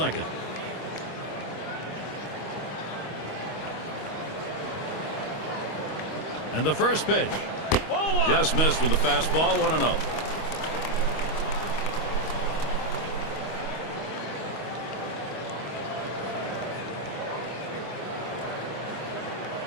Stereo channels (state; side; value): late; right; 25 ms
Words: And the first pitch. Just missed with the fastball. 1-0.